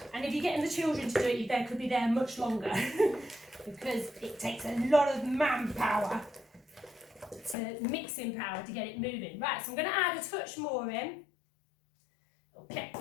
And if you're getting the children to do it, they could be there much longer because it takes a lot of manpower, mixing power to get it moving. Right, so I'm going to add a touch more in. Okay,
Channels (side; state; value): right; drops out; at 7.6 s